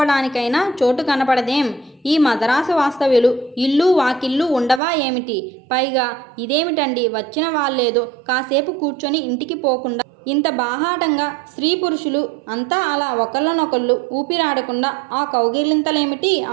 చోటు కనపడదేం? ఈ మద్రాసు వాస్తవ్యులు ఇల్లు వాకిళ్ళు ఉండవా ఏమిటి? పైగా ఇదేమిటండి, వచ్చిన వాళ్ళేదో కాసేపు కూర్చొని ఇంటికి పోకుండా ఇంత బాహాటంగా స్త్రీ పురుషులు అంతా అలా ఒకళ్ళనొకళ్ళు ఊపిరాడకుండా ఆ కౌగిలింతలేమిటి,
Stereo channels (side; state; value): left; drops out; at 4.8 s